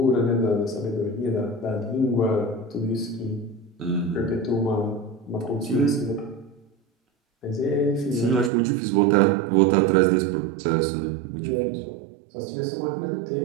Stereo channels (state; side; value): drops out; left; at 8.5 s